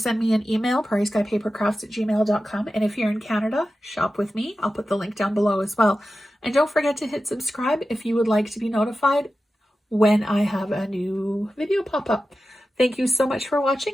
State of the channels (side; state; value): both; normal; correlation 0.93